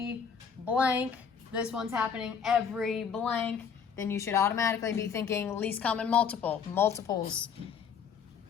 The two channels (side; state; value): right; quieter; 6.8 dB